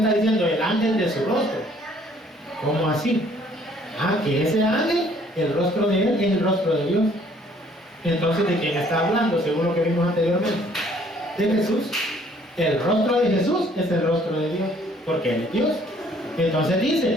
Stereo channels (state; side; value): normal; both; correlation 0.60